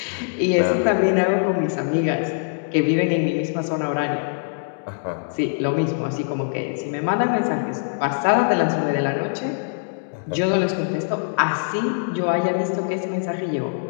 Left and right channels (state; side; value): silent; right; digital silence